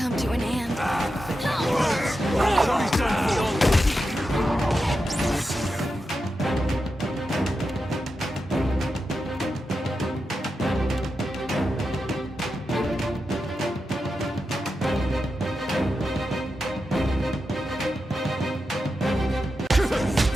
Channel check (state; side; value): normal; both; correlation 0.89